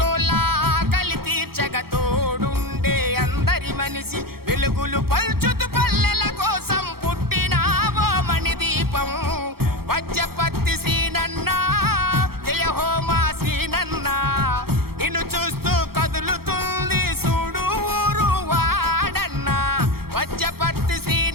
ఆకలి తీర్చగ తోడుండే అందరి మనిషి, వెలుగులు పల్చుతు పల్లెల కోసం పుట్టినావో మణి దీపం. వజ్రపత్తి శ్రీనన్న జయ హో మా శ్రీనన్న, నిన్ను చూస్తూ కదులుతుంది చూడు ఊరు వాడన్న. వజ్రపత్తి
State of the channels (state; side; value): late; left; 0.94 ms